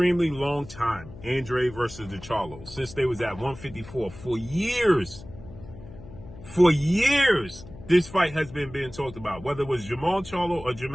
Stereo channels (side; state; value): left; noise; hum, 16 dB below the sound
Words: long time. Andrade versus the Charlo, since they was at 154 for years. For years, this fight has been being talked about, whether it was Jermall Charlo or